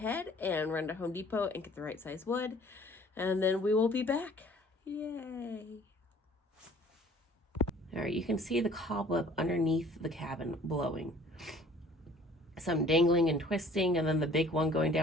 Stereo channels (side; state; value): both; normal; correlation 0.53